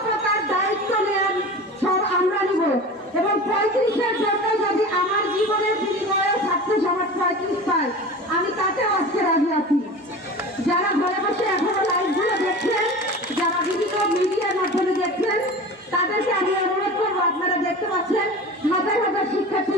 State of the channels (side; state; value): both; normal; correlation 0.34